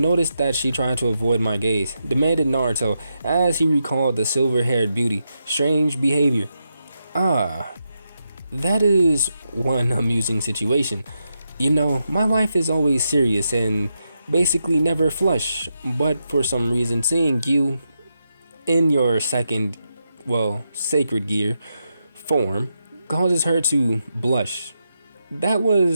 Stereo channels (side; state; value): both; inverted; correlation -0.85